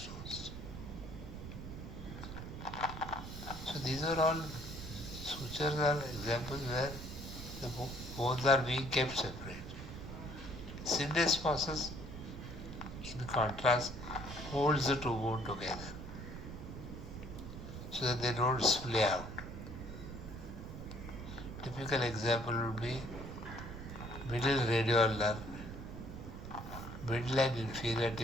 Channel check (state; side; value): noise; right; rumble, 9 dB below the sound